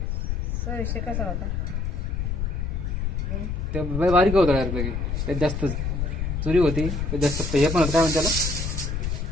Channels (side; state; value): left; noise; rumble, 1 dB below the sound